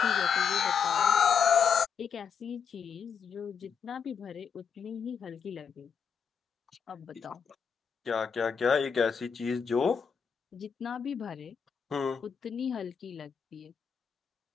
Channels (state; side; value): quieter; right; 6.7 dB